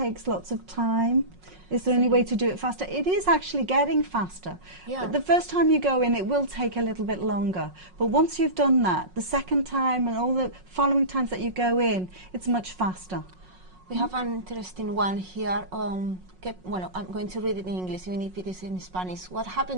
lots of time. Is there any way to do it faster? It is actually getting faster. Yeah. But the first time you go in, it will take a little bit longer. But once you've done that, the second time and all the following times that you go in, it's much faster. We have an interesting one here. Well, I'm going to read it in English, even if it is in Spanish. What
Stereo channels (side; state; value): left; late; 5.5 ms